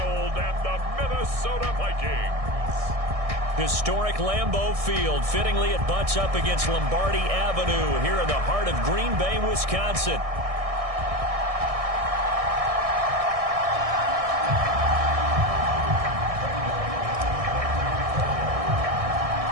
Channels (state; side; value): late; left; 1.6 ms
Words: and the Minnesota Vikings. Historic Lambeau Field. Fittingly, it butts up against Lombardi Avenue here in the heart of Green Bay, Wisconsin.